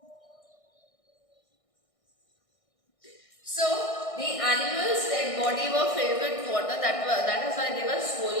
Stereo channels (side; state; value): right; late; 1.6 ms